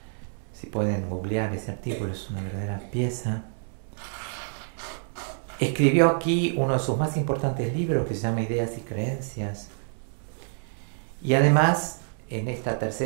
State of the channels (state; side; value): silent; left; 60 dB below the other